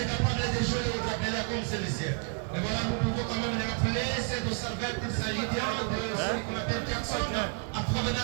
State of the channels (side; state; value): left; quieter; 38.5 dB